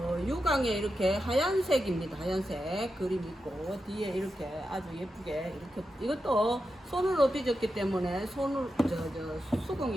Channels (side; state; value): both; normal; correlation 0.89